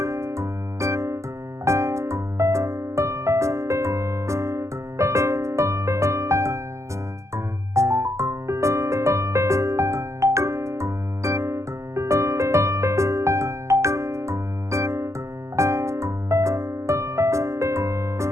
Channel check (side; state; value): left; late; 0.14 ms